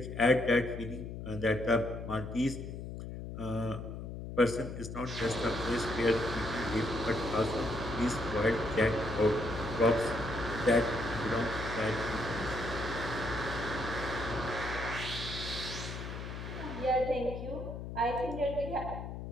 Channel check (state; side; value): noise; left; hum, 8 dB below the sound